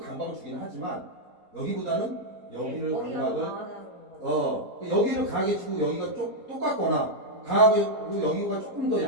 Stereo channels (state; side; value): late; left; 4.3 ms